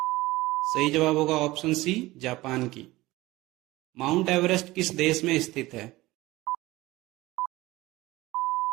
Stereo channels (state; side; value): quieter; left; 19.0 dB